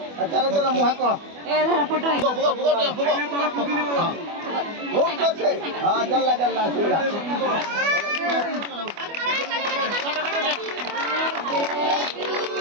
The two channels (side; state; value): left; late; 25 ms